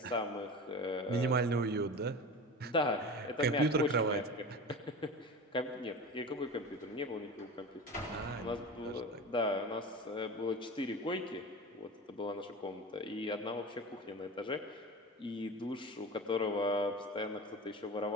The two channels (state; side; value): normal; both; correlation 0.31